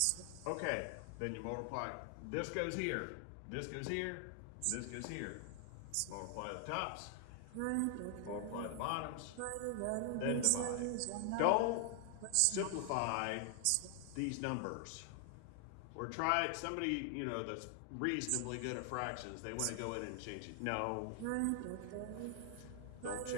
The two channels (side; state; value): both; different; correlation 0.00